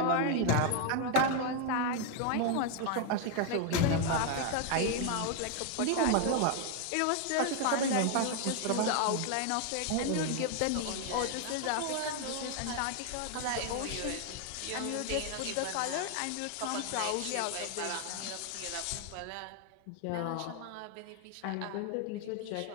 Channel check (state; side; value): different; both; correlation 0.01